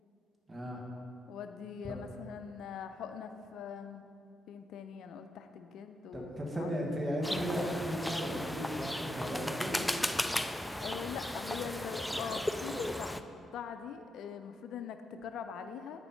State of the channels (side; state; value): both; normal; correlation 0.84